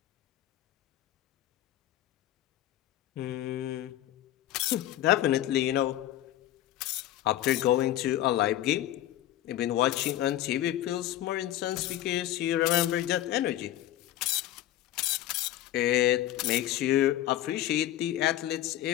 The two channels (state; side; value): quieter; right; 13.4 dB